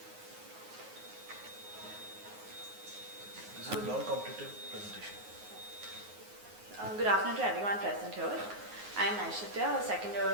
This is a non-competitive presentation. Good afternoon to everyone present here. I am Naishithya, a second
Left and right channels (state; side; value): late; left; 9.5 ms